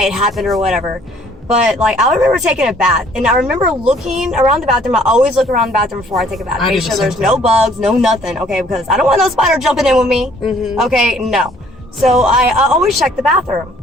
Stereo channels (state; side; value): normal; both; correlation 0.60